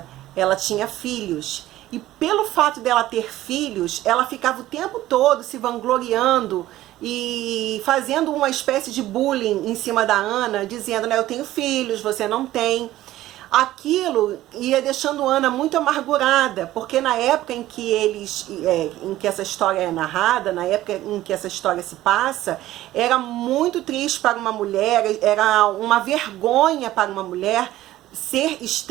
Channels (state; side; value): quieter; left; 15.0 dB